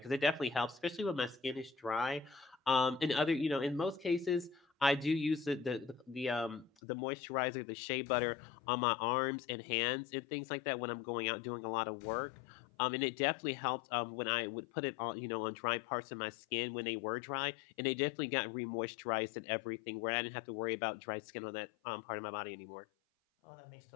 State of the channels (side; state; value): right; drops out; at 6.7 s